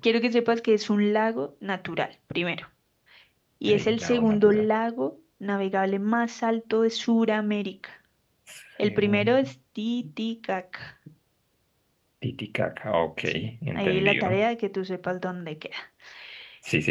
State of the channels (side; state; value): both; identical; correlation 1.00